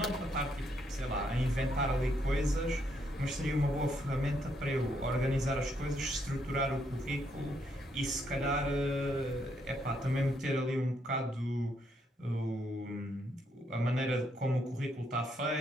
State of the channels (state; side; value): normal; both; correlation 0.75